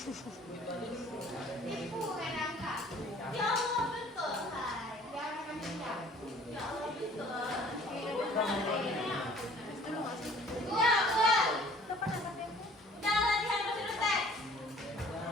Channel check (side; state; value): both; normal; correlation 0.52